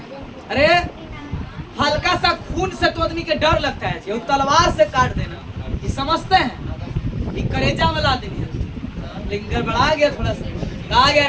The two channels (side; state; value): both; identical; correlation 1.00